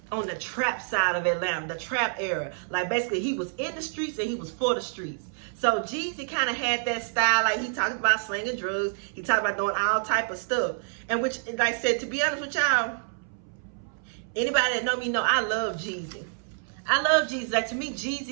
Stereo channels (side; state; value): left; silent; 60 dB below the other